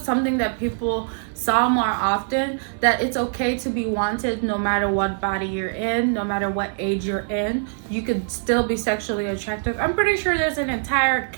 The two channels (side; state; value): left; silent; 61 dB below the other